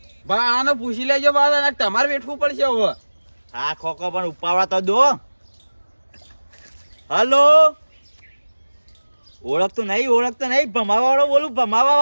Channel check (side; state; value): both; inverted; correlation -1.00